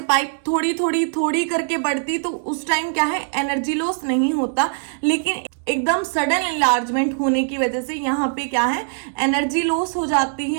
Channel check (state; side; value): silent; left; 65 dB below the other